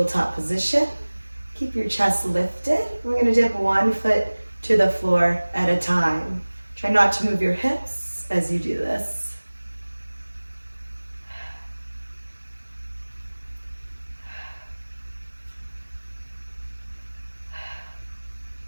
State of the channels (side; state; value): both; inverted; correlation -1.00